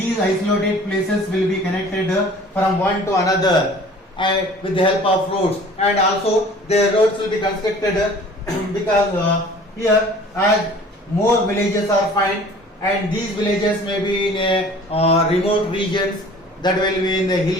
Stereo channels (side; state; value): both; normal; correlation 0.48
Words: isolated places will be connected from one to another with the help of roads. And also the roads will be constructed because here as more villages are found, and these villages may be in remote regions, that will be in the